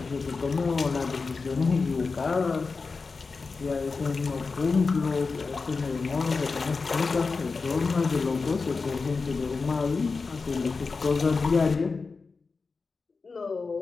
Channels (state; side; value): quieter; right; 4.4 dB